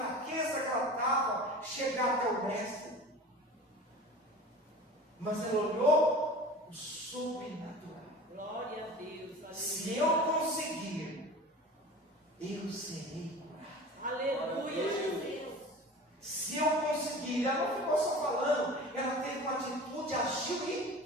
que ela estava, chegar até o mestre. Mas ela olhou o sobrenatural. Glória a Deus, aleluia. Se eu conseguir, eu serei curado. Aleluia, Jesus. Se eu conseguir, ela não ficou só falando, ela teve uma atitude, agiu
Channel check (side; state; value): both; normal; correlation 0.37